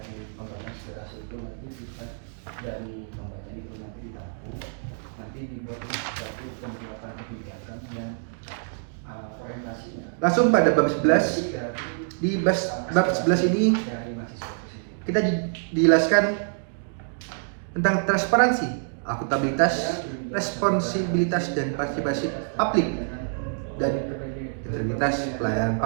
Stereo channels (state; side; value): silent; left; digital silence